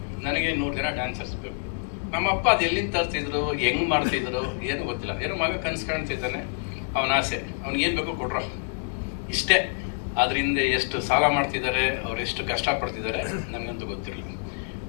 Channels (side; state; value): right; silent; 60 dB below the other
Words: ನನಗೆ 100 ಜನ ಡ್ಯಾನ್ಸರ್ಸ್ ಬೇಕು. ನಮ್ಮಪ್ಪ ಅದು ಎಲ್ಲಿಂದ ತರ್ತಿದ್ರು, ಹೆಂಗ್ ಮಾಡ್ತಿದ್ರು ಏನು ಗೊತ್ತಿಲ್ಲ. ಏನೋ ಮಗ ಕನ್ಸು ಕಾಣ್ತಿದ್ದಾನೆ, ಅವನ ಆಸೆ, ಅವ್ನಿಗೆ ಏನ್ ಬೇಕೋ ಕೊಡ್ರೋ, ಇಷ್ಟೇ. ಅದರಿಂದ ಎಷ್ಟು ಸಾಲ ಮಾಡ್ತಿದ್ದಾರೆ, ಅವ್ರು ಎಷ್ಟು ಕಷ್ಟಪಡ್ತಿದ್ದಾರೆ ನನಗಂತೂ ಗೊತ್ತಿರಲಿಲ್ಲ.